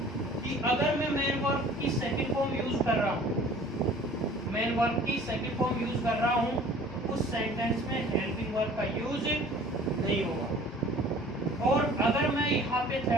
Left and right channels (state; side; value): normal; both; correlation 0.49